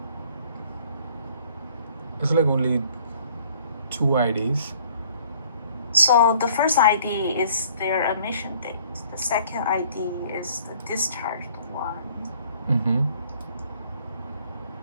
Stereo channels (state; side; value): inverted; both; correlation -0.58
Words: It's like only 2 IDs. So the first ID is their emission date. The second ID is the discharged one.